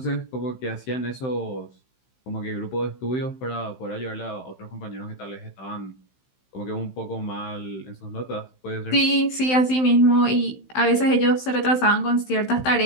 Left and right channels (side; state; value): right; late; 16 ms